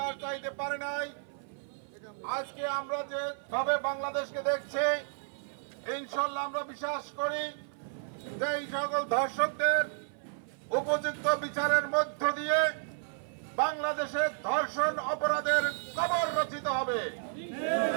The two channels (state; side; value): silent; left; 56 dB below the other